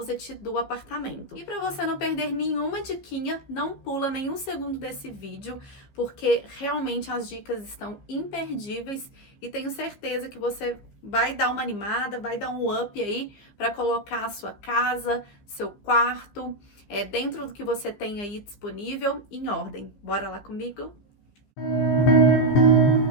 do apartamento. E para você não perder nenhuma diquinha, não pula nenhum segundo desse vídeo, porque realmente as dicas estão imperdíveis e tenho certeza que você vai dar uma animada, vai dar um up aí para colocar a sua casa, seu quarto, dentro do que você tem aí disponível em ordem. Bora lá comigo?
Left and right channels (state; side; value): late; right; 15 ms